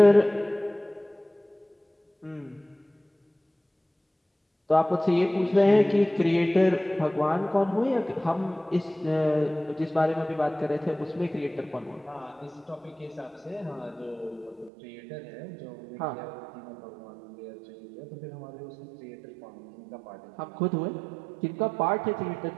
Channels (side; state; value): left; drops out; at 14.7 s